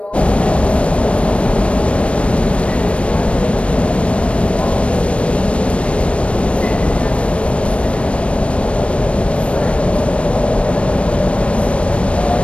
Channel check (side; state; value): right; late; 0.061 ms